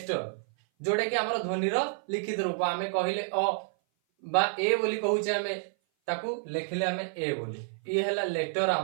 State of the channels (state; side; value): silent; left; 56 dB below the other